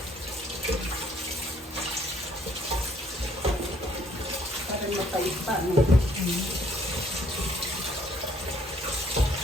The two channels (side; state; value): both; normal; correlation 0.64